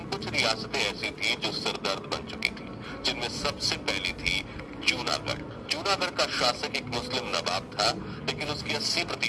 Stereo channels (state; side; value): identical; both; correlation 1.00